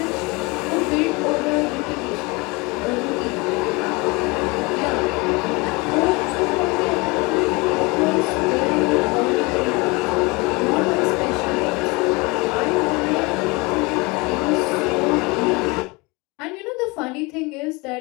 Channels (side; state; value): right; quieter; 26.1 dB